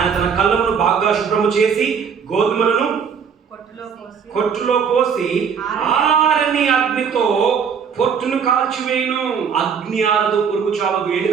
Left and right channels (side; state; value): left; quieter; 6.8 dB